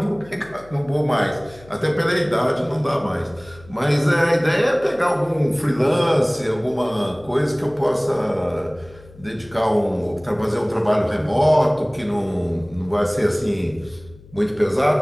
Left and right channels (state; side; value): noise; left; hum, 23 dB below the sound